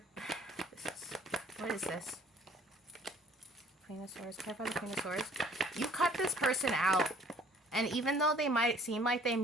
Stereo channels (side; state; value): both; normal; correlation 0.56